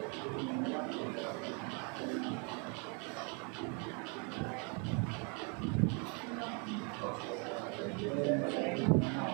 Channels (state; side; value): quieter; left; 35.7 dB